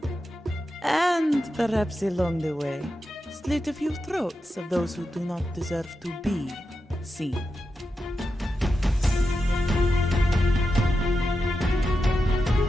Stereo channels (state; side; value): normal; both; correlation 0.89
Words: And perhaps along the way, slit a few throats of those who do not deserve to be seen.